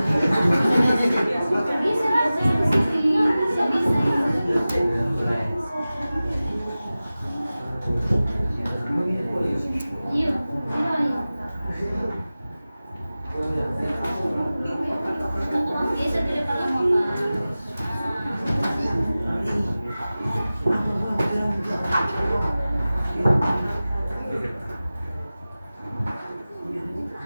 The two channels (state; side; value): inverted; both; correlation -0.96